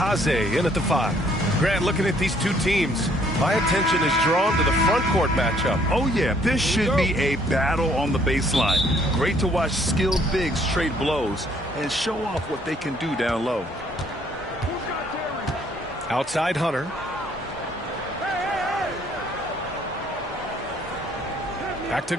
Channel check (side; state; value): both; normal; correlation 0.63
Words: in at the 5. Grant, looking at these two teams, my attention is drawn to the front court matchup. Oh, yeah, this should be a battle on the baseline. Great to watch skilled bigs trade blows and show off what they can do down low. Outside Hunter. Back to